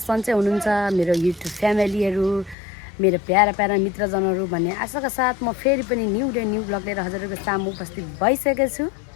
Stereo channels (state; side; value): drops out; right; at 2.6 s